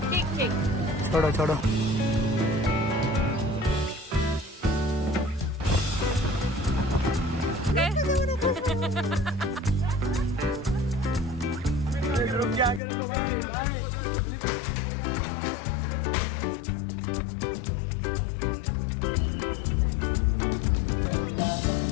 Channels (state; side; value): drops out; right; at 12.8 s